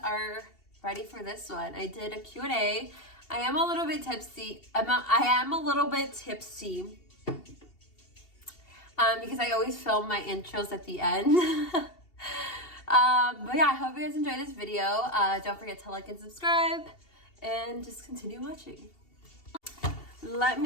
are ready for this one. I did a Q&A. I am a little bit tipsy. I am a little bit tipsy. Because I always film my intros at the end. But yeah, I hope you guys enjoy this video. Don't forget to like and subscribe. And just continue watching. Let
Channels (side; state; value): right; late; 2.7 ms